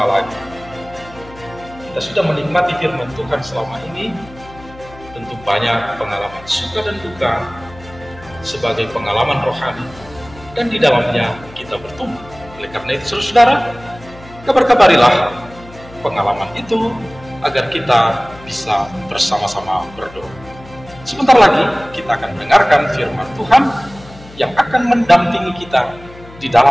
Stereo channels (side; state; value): left; noise; hum, 20 dB below the sound